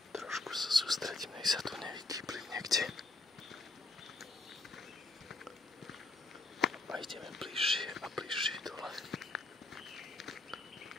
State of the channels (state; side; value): quieter; right; 3.0 dB